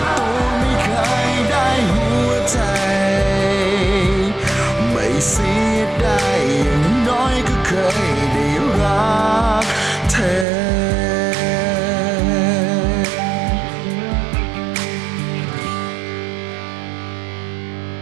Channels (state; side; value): drops out; left; at 10.5 s